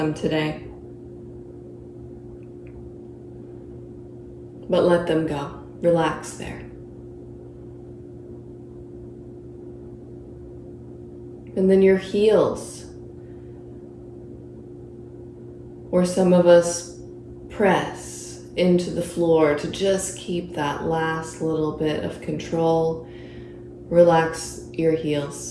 today, but let them go. Relax there. And then your heels, where some of us press into the floor to just keep that last little bit of control. Relax your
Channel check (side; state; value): both; identical; correlation 1.00